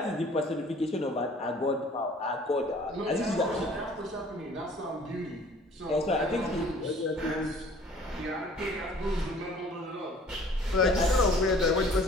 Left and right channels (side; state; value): both; normal; correlation 0.53